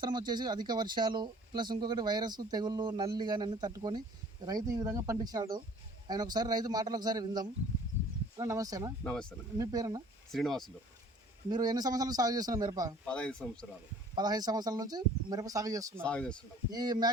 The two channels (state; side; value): normal; both; correlation 0.51